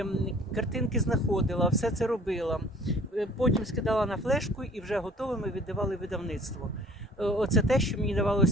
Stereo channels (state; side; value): normal; both; correlation 0.51